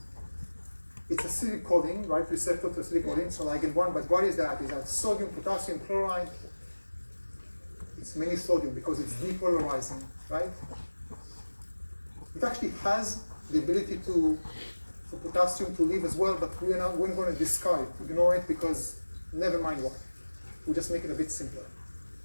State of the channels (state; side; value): inverted; both; correlation -1.00